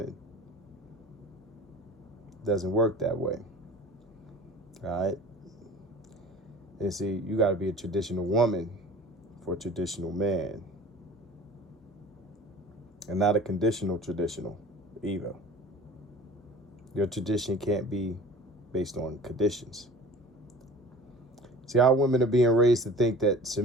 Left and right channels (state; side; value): normal; both; correlation 0.42